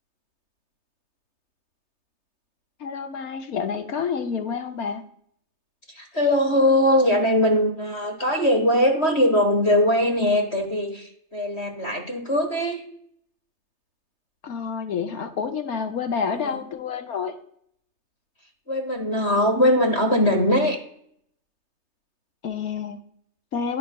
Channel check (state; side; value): late; right; 3.3 ms